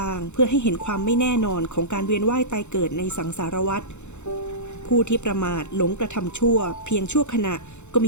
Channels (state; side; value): late; right; 0.83 ms